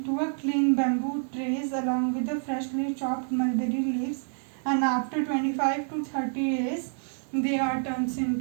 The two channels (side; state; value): left; silent; 57 dB below the other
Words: a clean bamboo trays along with the freshly chopped mulberry leaves, and after 25 to 30 days they are turned